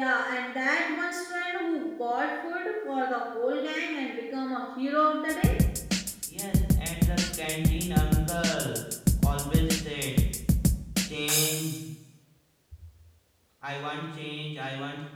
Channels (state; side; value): identical; both; correlation 1.00